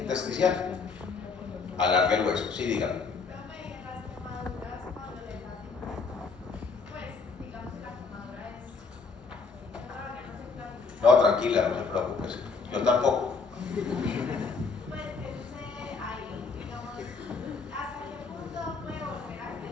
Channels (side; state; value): right; quieter; 4.8 dB